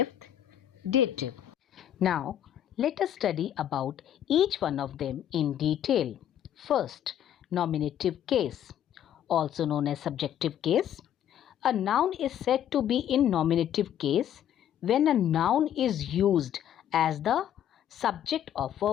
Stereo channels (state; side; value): quieter; right; 10.5 dB